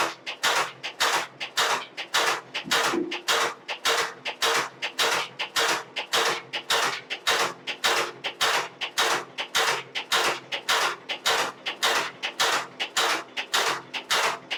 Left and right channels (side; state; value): both; identical; correlation 1.00